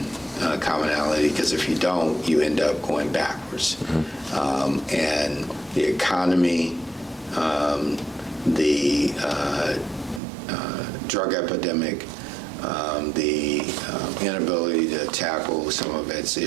commonality, because if you don't, you end up going backwards. And the economy, the drug epidemic, the inability to tackle some of its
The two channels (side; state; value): left; drops out; at 10.2 s